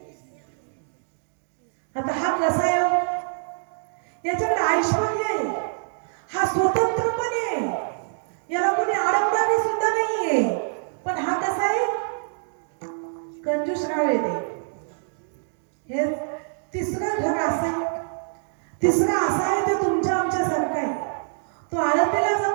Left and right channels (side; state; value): left; silent; digital silence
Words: आता हा कसा आहे हो? याच्याकडे ऐश्वर्य आहे, हा स्वतंत्रपणे आहे, याला कोणी अडवणारी सुद्धा नाहीये. पण हा कसा आहे? कंजूसराव येते. हे तिसरं घर असं आहे. तिसरा असा आहे ते तुमच्या आमच्या सारखा आहे. तो आळंदीला